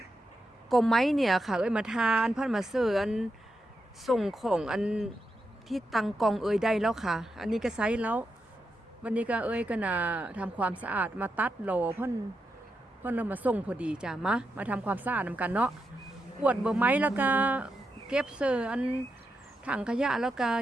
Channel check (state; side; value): normal; both; correlation 0.85